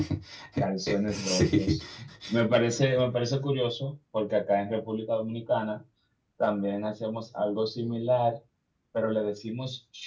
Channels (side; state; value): both; identical; correlation 1.00